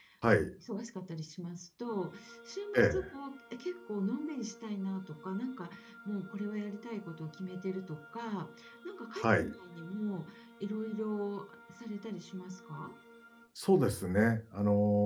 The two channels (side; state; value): both; identical; correlation 1.00